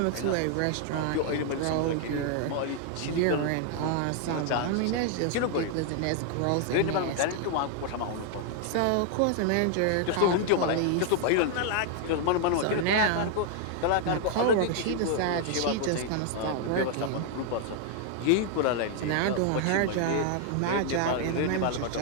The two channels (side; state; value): both; different; correlation 0.00